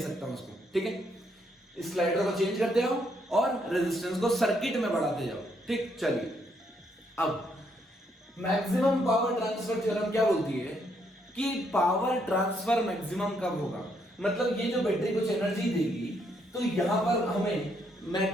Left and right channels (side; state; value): both; normal; correlation 0.73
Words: हूं उसको, ठीक है? इस स्लाइडर को चेंज करते हो और रेजिस्टेंस को सर्किट में बढ़ाते जाओ, ठीक? चलिए, अब मैक्सिमम पावर ट्रांसफर थ्योरम क्या बोलती है कि पावर ट्रांसफर मैक्सिमम कब होगा? मतलब ये जो बैटरी कुछ एनर्जी देगी, तो यहां पर हमें